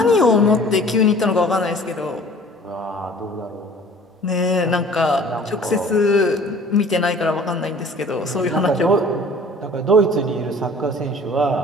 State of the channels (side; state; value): both; normal; correlation 0.49